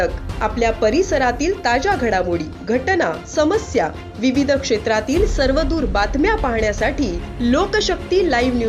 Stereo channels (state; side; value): identical; both; correlation 1.00